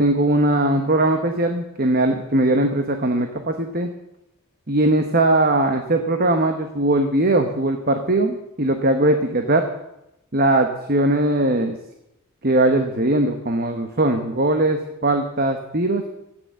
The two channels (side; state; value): both; normal; correlation 0.10